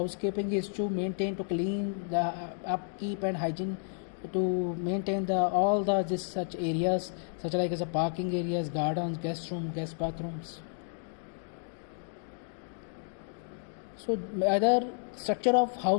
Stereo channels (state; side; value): silent; right; 57 dB below the other